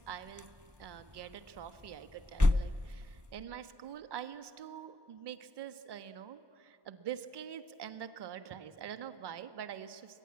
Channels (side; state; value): left; late; 1.1 ms